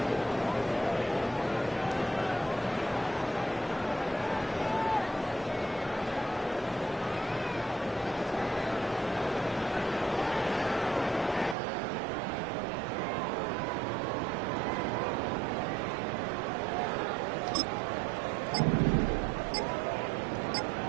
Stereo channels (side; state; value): left; drops out; at 11.6 s